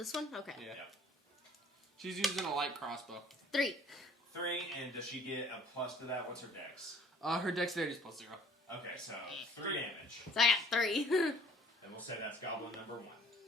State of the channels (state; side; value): normal; both; correlation 0.55